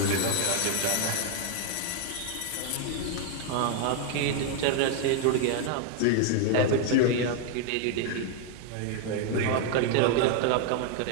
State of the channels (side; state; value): both; different; correlation 0.00